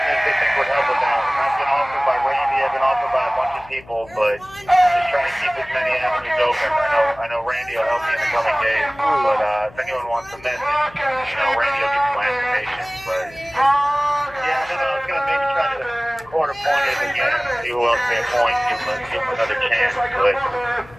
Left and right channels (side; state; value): left; noise; hum, 23 dB below the sound